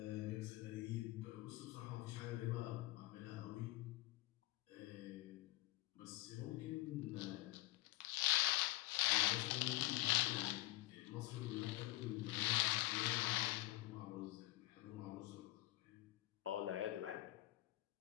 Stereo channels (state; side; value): quieter; right; 18.5 dB